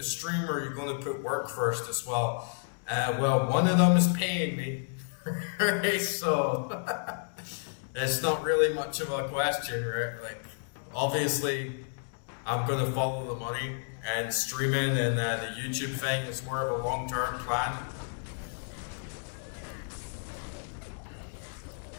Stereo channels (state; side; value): silent; right; digital silence